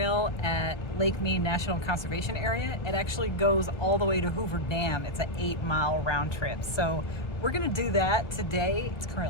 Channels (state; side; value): late; right; 1.3 ms